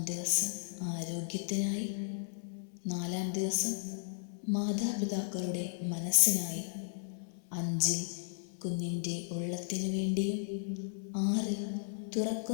ദിവസം ആരോഗ്യത്തിനായി, 4-ാം ദിവസം മാതാപിതാക്കളുടെ മനസ്സിനായി, 5-ൽ കുഞ്ഞിൻ്റെ ഉള്ളത്തിനു വേണ്ടിയും, 6-ൽ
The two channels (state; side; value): silent; right; 54 dB below the other